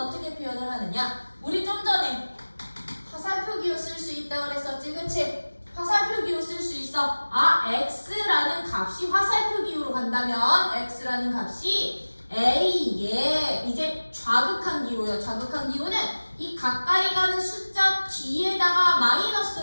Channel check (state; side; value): inverted; both; correlation -1.00